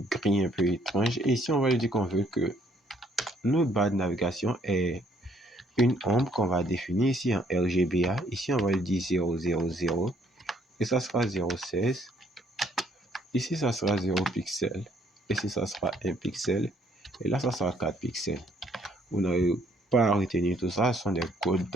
gris un peu étrange. Et ici, on va lui dire qu'on veut que notre barre de navigation est une ombre qu'on va définir ici en RGBA. Ici, on va lui dire 000. Et ça sera 0,16. Ici, ça sera 0 pixel. Ici, ça sera 1 pixel. Et là, ça sera 4 pixels. Vous n'avez pas à retenir tout ça. Ce sont des codes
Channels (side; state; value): both; normal; correlation 0.66